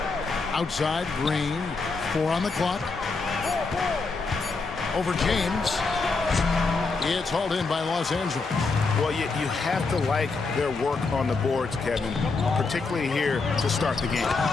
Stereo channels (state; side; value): quieter; right; 4.1 dB